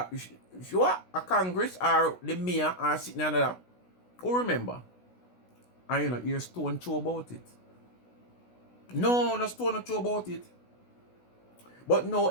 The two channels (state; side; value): late; right; 16 ms